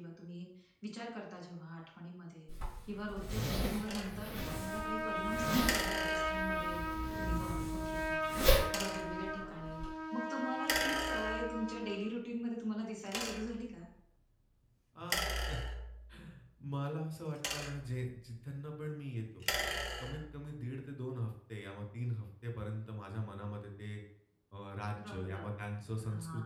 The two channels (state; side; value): identical; both; correlation 1.00